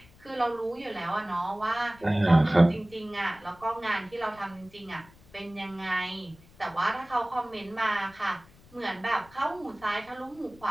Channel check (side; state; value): left; noise; rumble, 25 dB below the sound